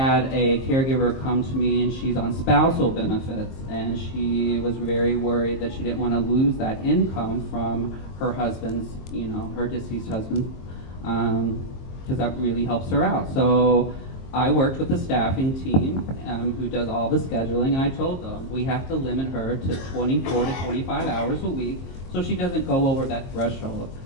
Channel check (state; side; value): late; right; 22 ms